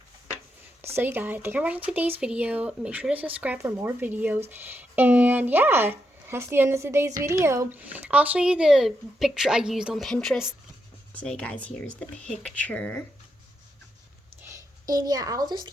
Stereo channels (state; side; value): normal; both; correlation 0.83